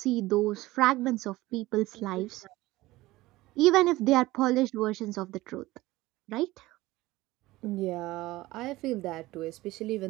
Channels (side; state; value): left; quieter; 18.5 dB